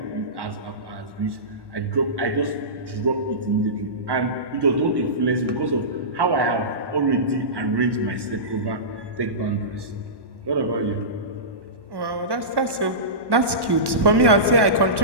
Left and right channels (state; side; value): late; left; 1.1 ms